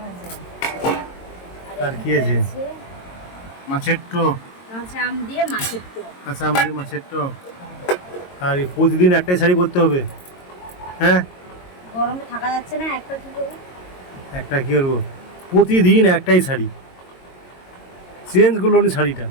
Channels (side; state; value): right; late; 22 ms